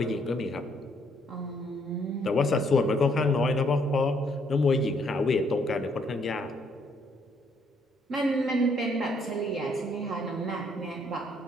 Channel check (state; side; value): normal; both; correlation 0.69